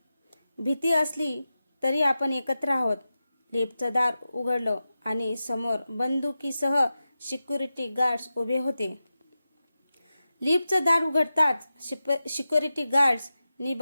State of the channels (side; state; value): both; inverted; correlation -0.93